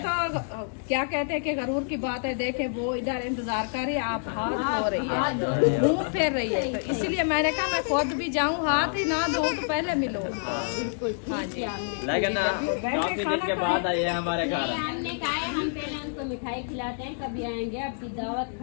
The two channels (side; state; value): right; silent; digital silence